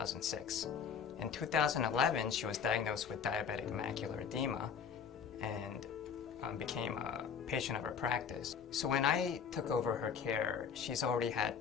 In 2011, she was diagnosed with diabetic macular edema and became a patient of our practice. So when I took over her care, she's already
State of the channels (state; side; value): quieter; right; 6.8 dB